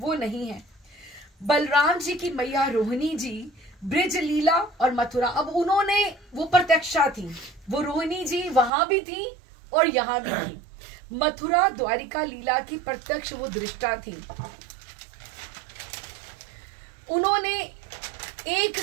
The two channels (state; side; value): drops out; left; at 8.7 s